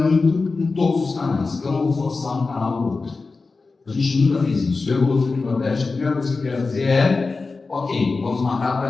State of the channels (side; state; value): right; quieter; 4.0 dB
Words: em todos os canais. Eu não vou forçar um canal ou outro. A gente nunca fez isso. Eu vou no Nordeste, a primeira coisa que eu quero fazer é, ok, vamos marcar